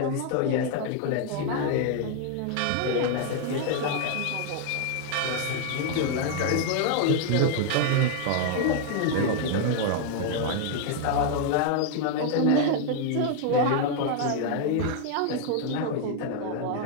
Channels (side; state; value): both; different; correlation 0.00